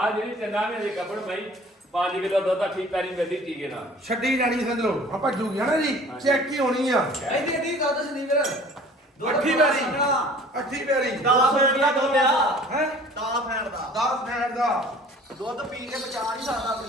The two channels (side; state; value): both; normal; correlation 0.48